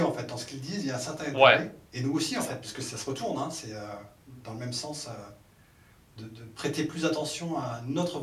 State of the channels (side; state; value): both; identical; correlation 1.00